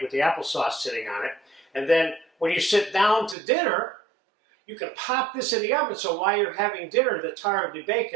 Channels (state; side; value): drops out; left; at 3.4 s